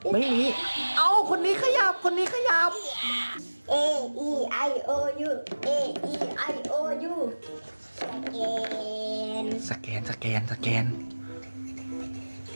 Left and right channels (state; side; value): inverted; both; correlation -1.00